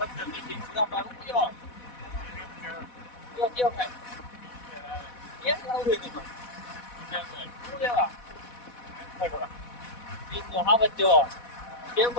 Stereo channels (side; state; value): right; late; 4.1 ms